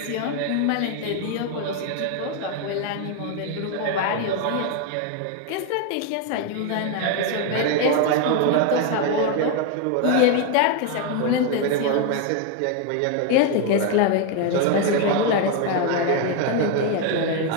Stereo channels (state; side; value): different; both; correlation 0.01